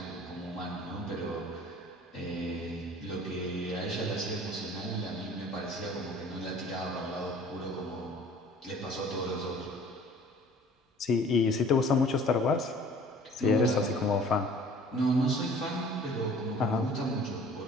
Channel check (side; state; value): both; normal; correlation 0.50